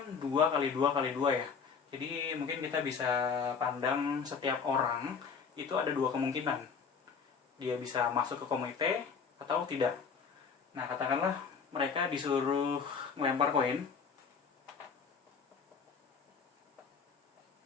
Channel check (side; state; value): right; quieter; 5.8 dB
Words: 2 kali 2 kali 2 ya. Jadi mungkin kita bisa pandang setiap orang itu ada 2 kemungkinan. Dia bisa masuk ke komite atau tidak. Nah, katakanlah mereka disuruh melempar koin.